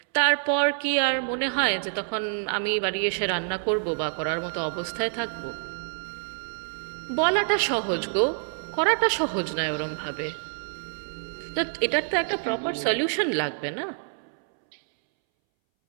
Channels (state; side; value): silent; left; 60 dB below the other